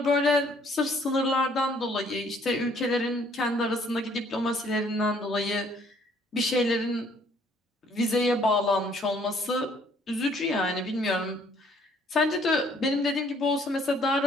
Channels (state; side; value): normal; both; correlation 0.62